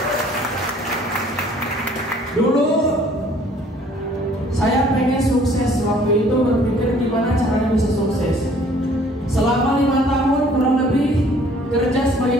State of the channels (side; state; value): both; normal; correlation 0.56